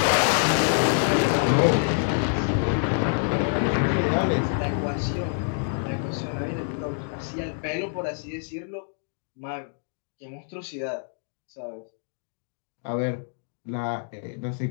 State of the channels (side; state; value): right; silent; 61 dB below the other